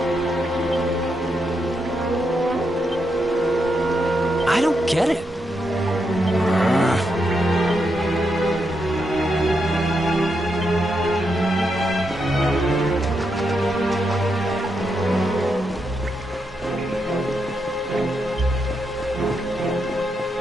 I don't get it.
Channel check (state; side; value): normal; both; correlation 0.82